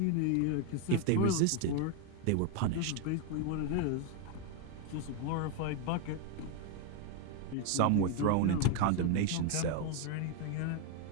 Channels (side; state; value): both; different; correlation 0.01